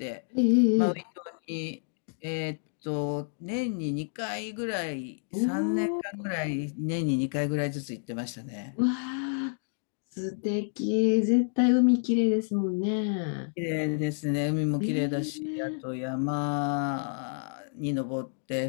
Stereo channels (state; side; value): silent; right; digital silence